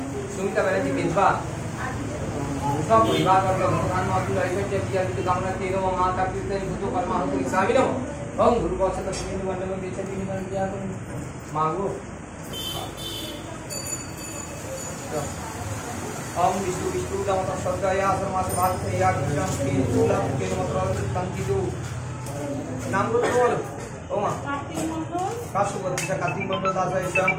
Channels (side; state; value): both; identical; correlation 1.00